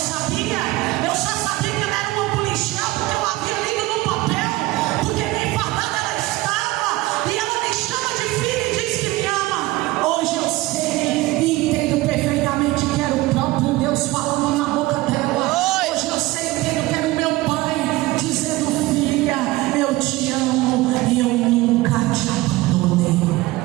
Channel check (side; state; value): left; quieter; 19.2 dB